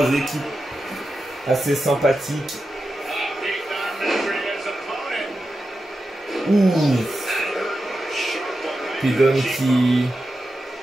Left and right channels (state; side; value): normal; both; correlation 0.90